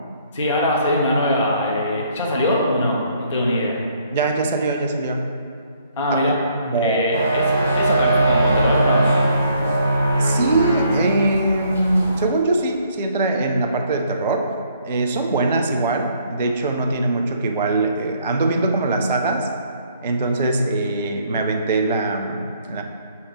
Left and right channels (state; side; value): inverted; both; correlation -0.66